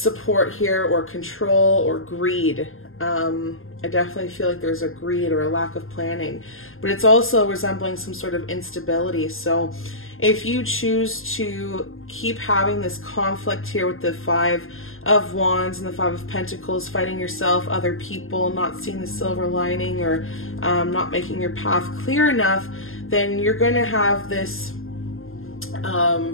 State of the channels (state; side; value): late; right; 0.60 ms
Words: here, or control, or greed. I definitely feel like there's a greed or a lack of planning, but it's also resembling some sort of instability. So if you choose to keep having this conflict here with the 5 of Wands and the 5 of Pentacles, fighting yourself, other people, not seeing the silver lining, or not making your path clear enough, then you're going to have this